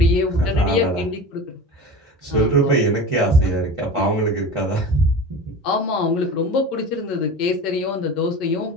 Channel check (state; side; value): normal; both; correlation 0.33